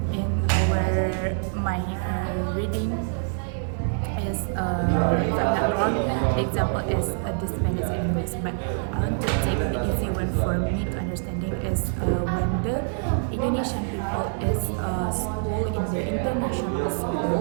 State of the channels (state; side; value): silent; left; digital silence